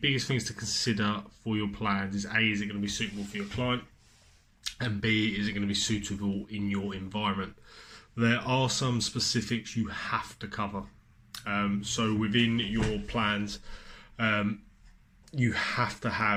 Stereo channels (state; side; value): identical; both; correlation 1.00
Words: things to consider for your plans is A, is it going to be suitable for your client? And B, is it going to be suitable in your environment? There are some specifics you have to cover. So within your plans, you have to